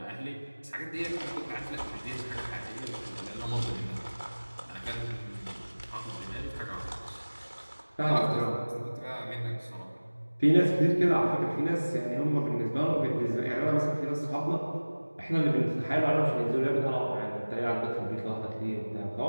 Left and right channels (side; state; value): both; inverted; correlation -1.00